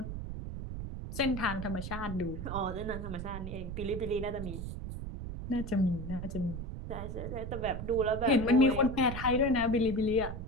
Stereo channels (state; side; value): noise; right; rumble, 6 dB below the sound